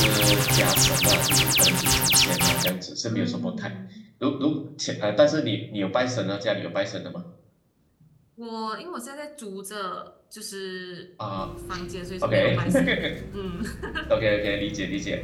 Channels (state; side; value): identical; both; correlation 1.00